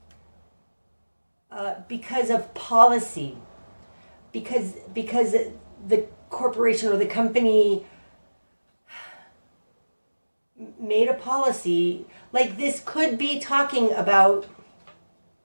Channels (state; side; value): inverted; both; correlation -1.00